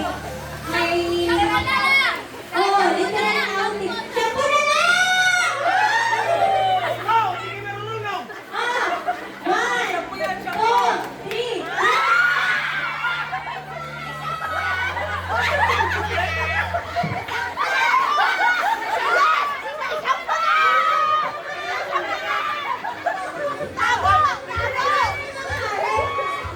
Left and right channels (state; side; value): identical; both; correlation 1.00